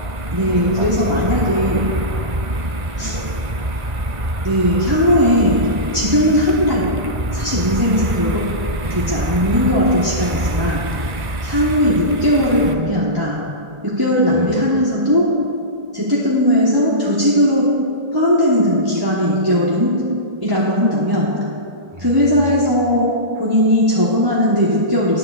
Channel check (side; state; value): left; late; 1.5 ms